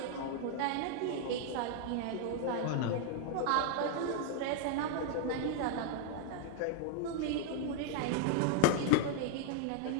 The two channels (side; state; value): both; different; correlation -0.01